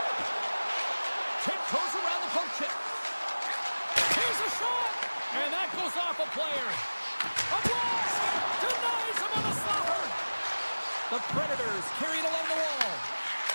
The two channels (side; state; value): both; inverted; correlation -1.00